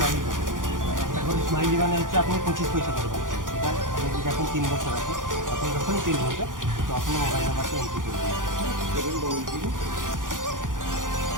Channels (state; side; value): late; left; 0.89 ms